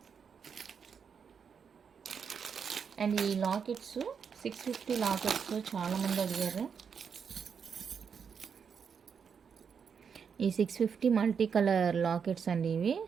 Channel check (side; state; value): left; quieter; 6.6 dB